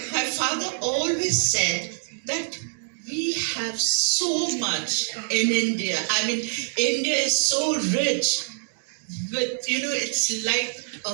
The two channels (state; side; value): silent; left; digital silence